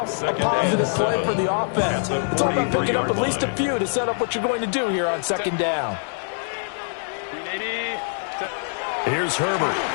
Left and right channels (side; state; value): right; silent; digital silence